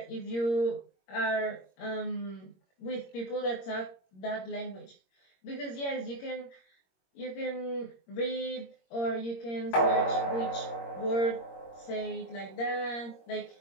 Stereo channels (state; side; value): late; right; 21 ms